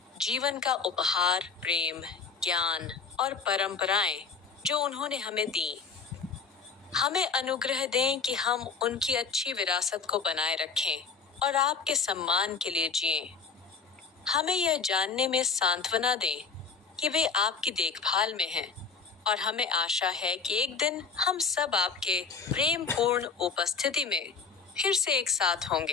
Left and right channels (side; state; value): right; quieter; 5.3 dB